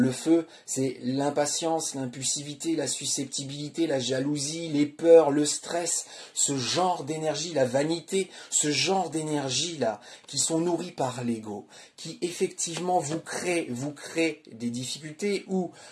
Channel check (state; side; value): identical; both; correlation 1.00